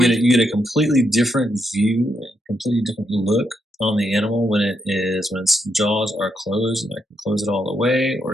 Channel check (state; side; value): normal; both; correlation 0.80